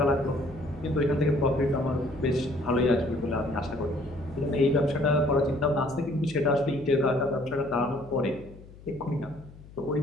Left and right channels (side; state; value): left; noise; hum, 20 dB below the sound